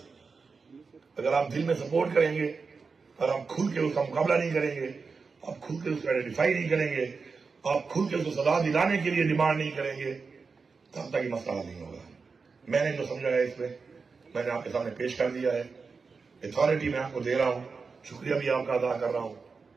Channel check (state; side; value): quieter; left; 4.8 dB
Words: اگر آپ دل میں سپورٹ کریں گے, اگر آپ کھل کے اس کا مقابلہ نہیں کریں گے, آپ کھل کے اس کو آئیڈینٹیفائی نہیں کریں گے, آپ کھل کے اس کو سزا دلانے کے لیے ڈیمانڈ نہیں کریں گے, تب تک یہ مسئلہ نہیں ہوگا. میں نے جو سمجھا ہے اس میں نے آپ کے سامنے پیش کر دیا ہے. اتھارٹی میں آپ کو دے رہا ہوں, شکریہ بھی آپ کا ادا کر رہا ہوں